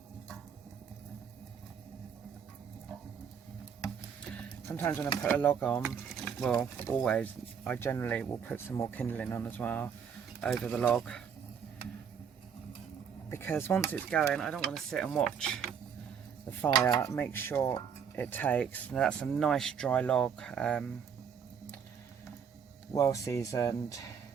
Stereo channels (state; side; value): quieter; left; 7.3 dB